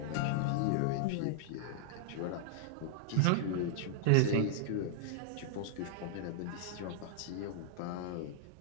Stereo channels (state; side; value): different; both; correlation -0.01